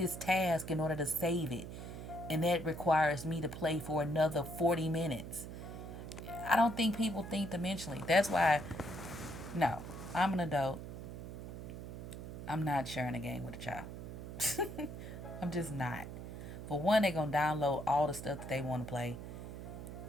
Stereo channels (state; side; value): noise; right; hum, 9 dB below the sound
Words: task in order to save it? And that requires me to play for another 40 minutes. I don't think people think dimensionally. That's why, no, I'm an adult. I'm not sharing a game with a child. I'm just not. For one, they're going to download all the stuff that they want to play.